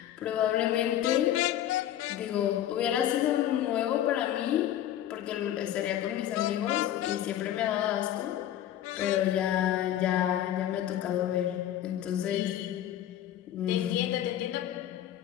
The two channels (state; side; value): quieter; right; 11.8 dB